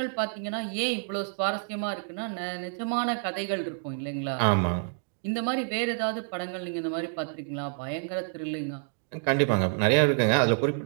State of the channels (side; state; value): left; silent; digital silence